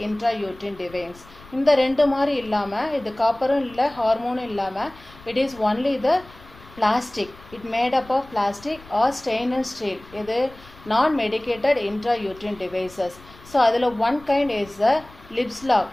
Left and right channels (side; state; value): left; noise; rumble, 22 dB below the sound